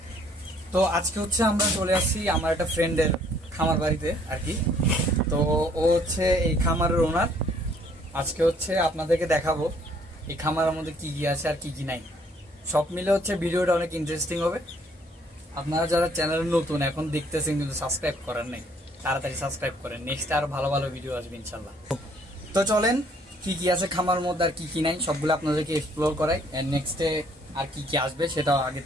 তো আজকে হচ্ছে আমরা চলে আসছি আমার একটা ফ্রেন্ডের খামার বাড়িতে আর কি। তো ও হচ্ছে এই খামারের ওনার। আজকে হচ্ছে আপনাদেরকে দেখাবো এই খামারের মধ্যে কি কি আছে আর কি কি নাই। সব মিলে হচ্ছে ভিডিওটা অনেক ইন্টারেস্টিং হবে। আপনারা যারা চ্যানেলে নতুন এখন দেখতেছেন কিন্তু সাবস্ক্রাইব করেন নাই, তাড়াতাড়ি সাবস্ক্রাইব করেন। নেক্সট আরো ভালো ভালো ভিডিও আসবে ইনশাল্লাহ। তো চলেন কি কি আছে খামার মধ্যে আর কি কি নাই সবগুলো আপনাদেরকে এক্সপ্লোর করাই। এন্ড নেক্সটে আর কি কি আসবে সেটাও আগে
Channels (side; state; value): both; normal; correlation 0.62